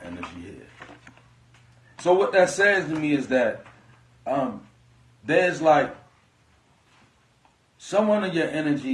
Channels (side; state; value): both; identical; correlation 1.00